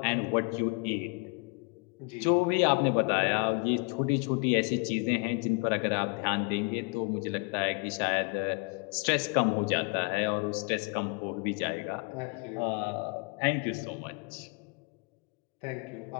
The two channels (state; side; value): quieter; right; 31.7 dB